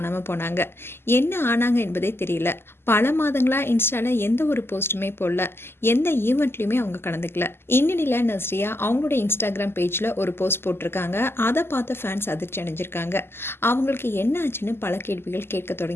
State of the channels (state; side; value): late; right; 0.12 ms